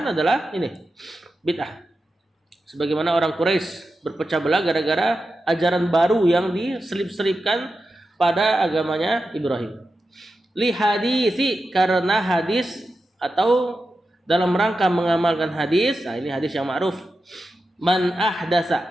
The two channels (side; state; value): both; normal; correlation 0.91